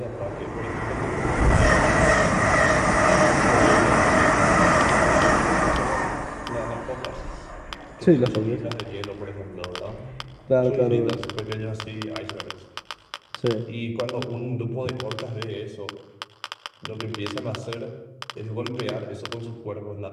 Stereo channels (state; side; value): identical; both; correlation 1.00